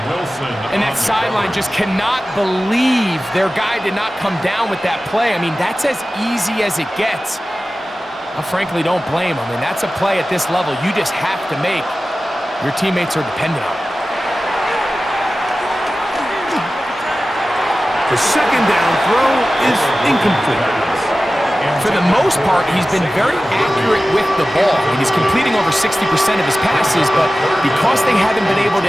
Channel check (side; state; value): both; normal; correlation 0.95